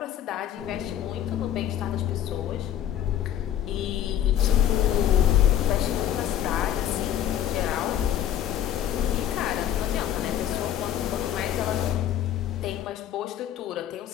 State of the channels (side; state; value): right; quieter; 10.9 dB